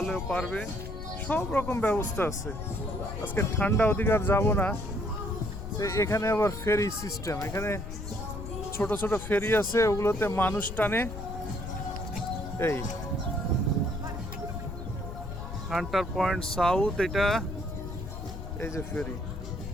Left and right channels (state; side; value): noise; left; rumble, 8 dB below the sound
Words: পারবে, সব রকম ব্যবস্থা আছে। আজকে ঠান্ডা অধিকার যাব না। এখানে আবার ফেরি সিস্টেম, এখানে ছোট ছোট ফেরি আছে, ওগুলোতে মানুষ টানে। এই হান্টার পয়েন্ট সাউথ, এটা এই যে ফেরি,